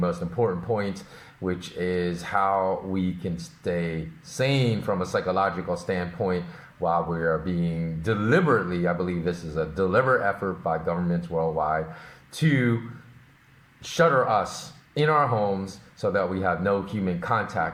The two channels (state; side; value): identical; both; correlation 1.00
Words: important points, which is how we can stay sane from a psychological standpoint while we are being deliberately, I believe this is a deliberate effort by governments worldwide, to shutter us in our homes so that we have no human